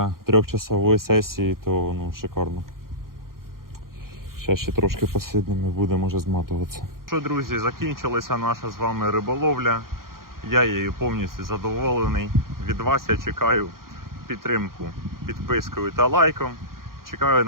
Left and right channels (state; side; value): late; left; 0.92 ms